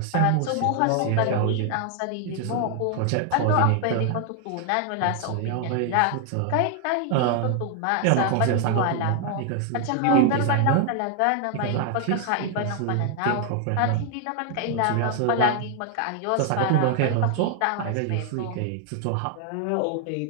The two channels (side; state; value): both; different; correlation 0.00